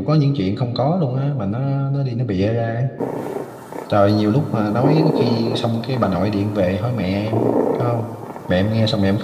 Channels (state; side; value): identical; both; correlation 1.00